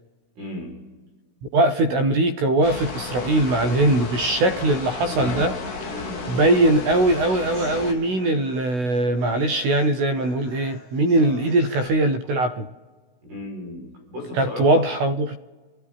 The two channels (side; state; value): left; late; 16 ms